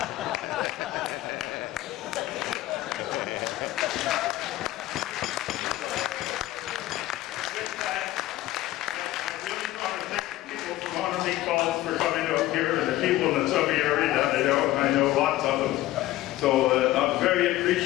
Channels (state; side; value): quieter; right; 15.7 dB